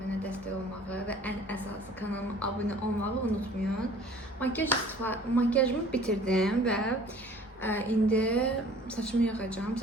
dəstək olmağı və ən əsası kanalıma abunə olmağı unutmayın. Makyajımı bitirdim və indi saçımı yığacağım.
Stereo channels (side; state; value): both; normal; correlation 0.50